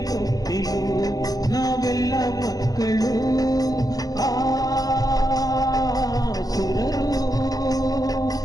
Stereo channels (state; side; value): late; right; 0.18 ms